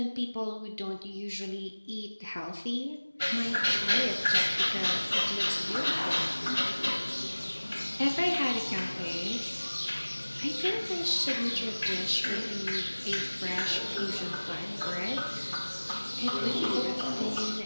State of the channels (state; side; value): inverted; both; correlation -1.00